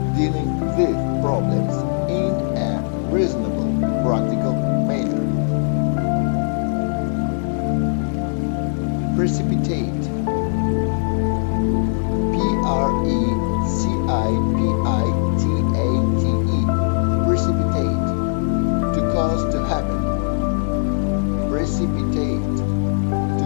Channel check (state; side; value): silent; right; 66 dB below the other